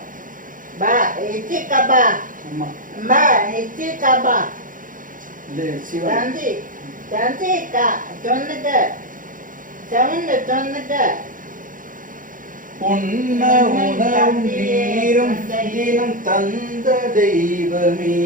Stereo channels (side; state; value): left; late; 0.39 ms